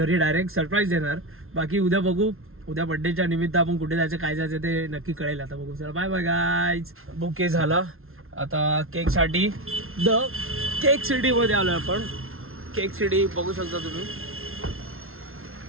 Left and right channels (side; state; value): left; late; 0.61 ms